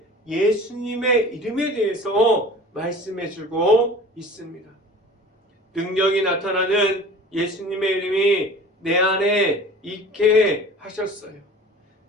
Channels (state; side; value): normal; both; correlation 0.42